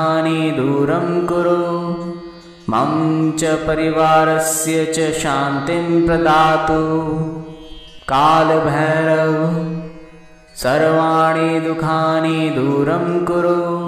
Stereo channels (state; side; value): identical; both; correlation 1.00